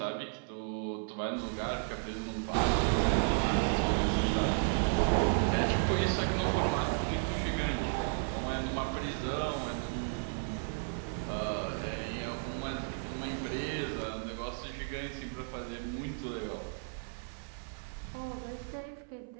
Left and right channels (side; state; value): left; silent; 55 dB below the other